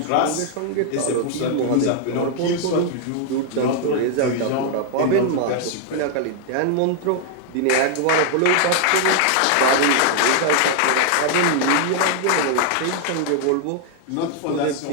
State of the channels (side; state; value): both; different; correlation 0.00